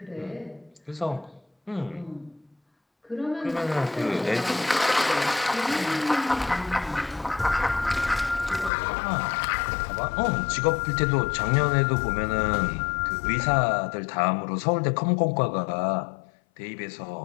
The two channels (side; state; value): right; drops out; at 8.7 s